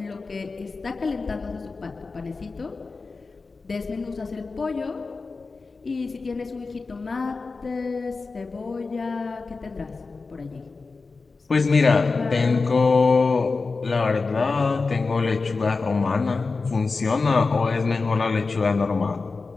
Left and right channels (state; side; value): quieter; right; 4.1 dB